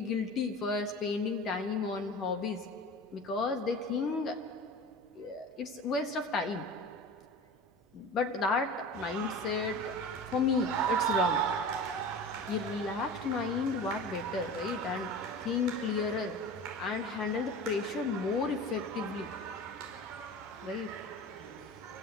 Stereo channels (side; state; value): both; normal; correlation 0.34